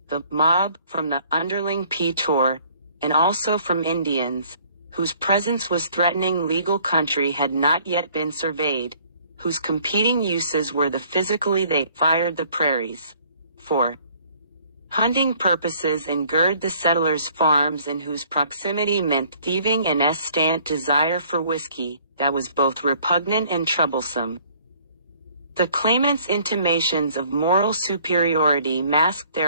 the mob from the underling P-Tour, and also from Indians, whose presence was threatening legal country had not yet been surveyed, whose competing uses were the physically they fired the prairies. 4. Hunting purposes and gird the settlers' farms and whose proximity meant thieving and estant desire for whiskey, that was both repugnant and troublesome. The claimants' intimations of moral superiority masked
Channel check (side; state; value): both; inverted; correlation -0.59